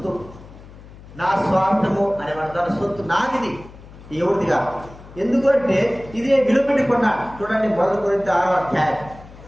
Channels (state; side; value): noise; left; hum, 19 dB below the sound